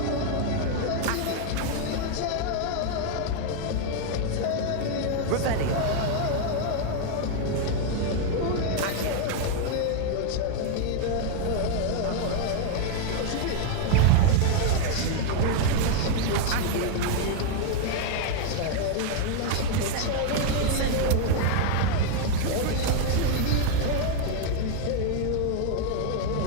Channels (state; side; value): different; both; correlation 0.00